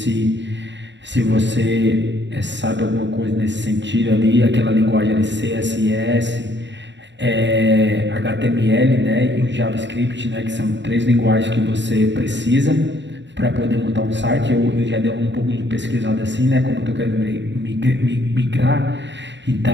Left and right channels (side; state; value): left; late; 0.52 ms